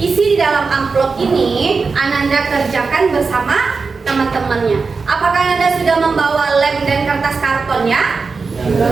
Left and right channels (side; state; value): left; quieter; 4.6 dB